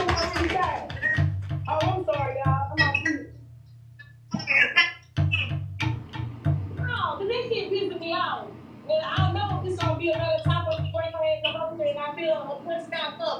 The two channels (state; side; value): identical; both; correlation 1.00